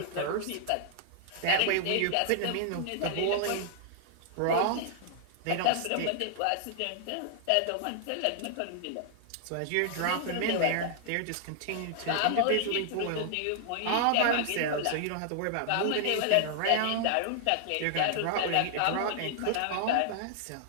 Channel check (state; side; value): different; both; correlation -0.01